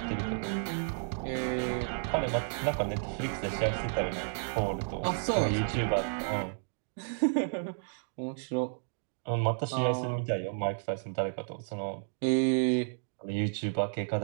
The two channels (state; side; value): silent; left; digital silence